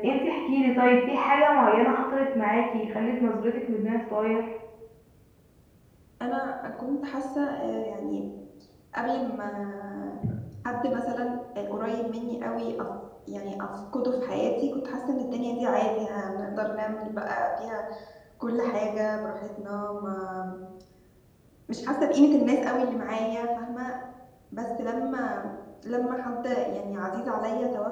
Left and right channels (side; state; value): both; identical; correlation 1.00